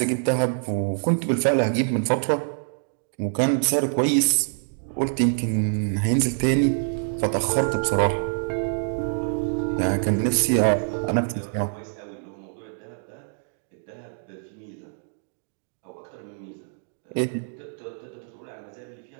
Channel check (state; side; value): silent; left; digital silence